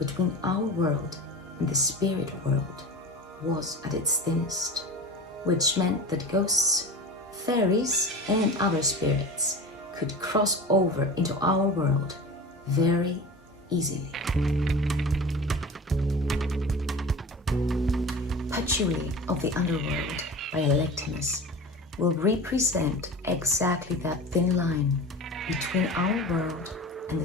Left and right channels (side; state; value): both; normal; correlation 0.33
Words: our world and the spirit world was at its thinnest, which meant that ghosts, fairies, and other spirits could cross over into our world very easily. Patchouli of the Underworld by Electimuss will represent exactly that thin line between our world and